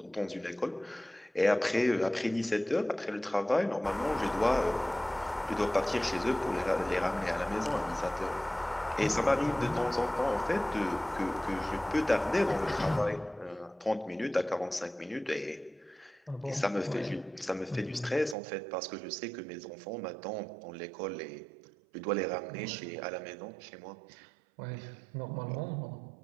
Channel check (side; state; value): left; drops out; at 18.4 s